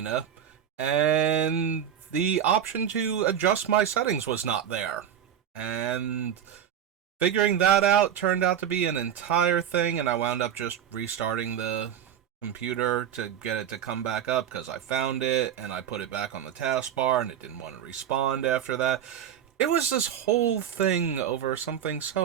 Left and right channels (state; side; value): quieter; left; 9.4 dB